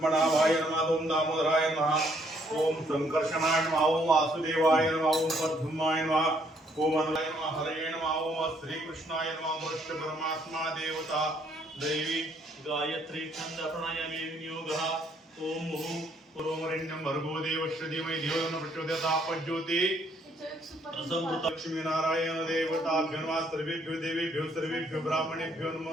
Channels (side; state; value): both; normal; correlation 0.68